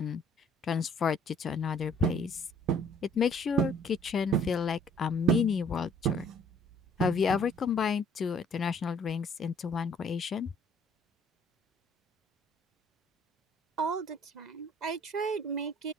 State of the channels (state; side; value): normal; both; correlation 0.58